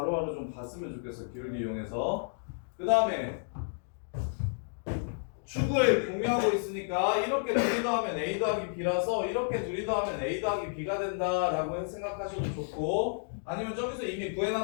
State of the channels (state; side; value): silent; right; digital silence